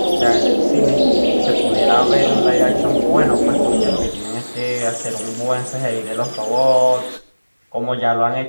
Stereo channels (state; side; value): inverted; both; correlation -1.00